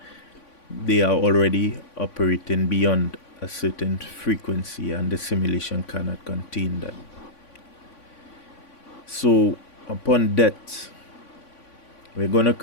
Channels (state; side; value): late; right; 3.5 ms